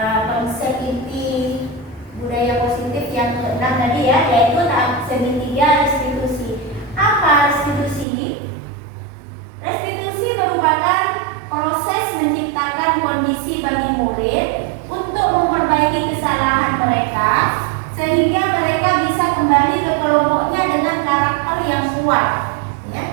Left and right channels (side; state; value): left; drops out; at 8.1 s